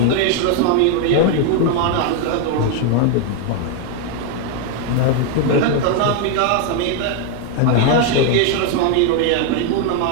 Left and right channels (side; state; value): both; different; correlation 0.01